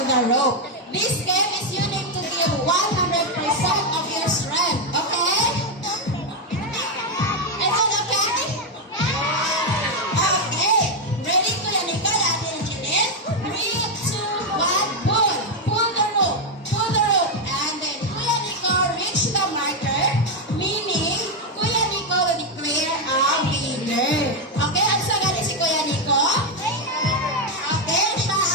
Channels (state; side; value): normal; both; correlation 0.04